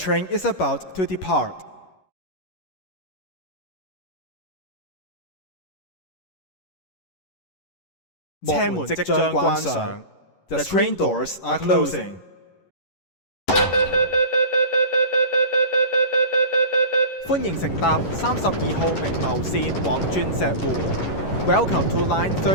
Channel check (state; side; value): late; right; 11 ms